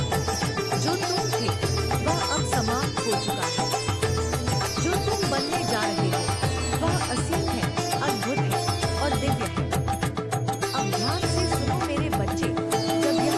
जो तुम थे वह अब समाप्त हो चुका है। जो तुम बनने जा रहे हो वह असीम है, अद्भुत है और दिव्य है। अब ध्यान से सुनो मेरे बच्चे, जब यह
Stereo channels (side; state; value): both; identical; correlation 1.00